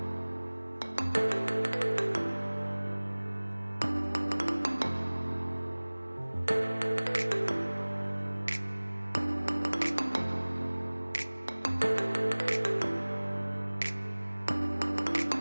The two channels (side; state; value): both; inverted; correlation -1.00